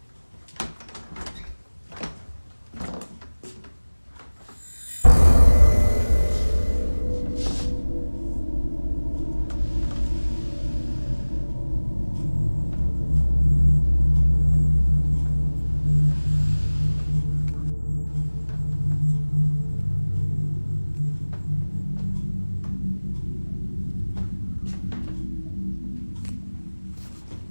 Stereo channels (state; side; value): inverted; both; correlation -1.00